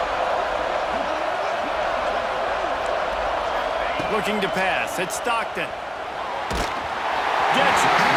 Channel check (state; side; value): identical; both; correlation 1.00